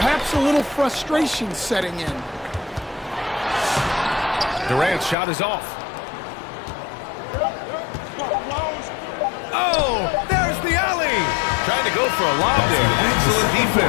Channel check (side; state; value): right; drops out; at 5.2 s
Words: a little frustration setting in. Durant's shot is off. Oh, there's the alley. Trying to go for a lob there. Excellent